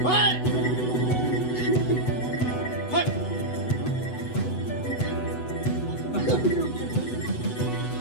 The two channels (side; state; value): right; late; 8.1 ms